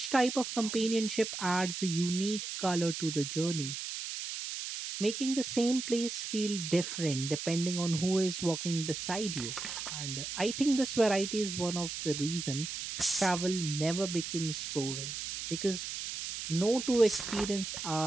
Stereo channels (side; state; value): right; noise; hiss, 6 dB below the sound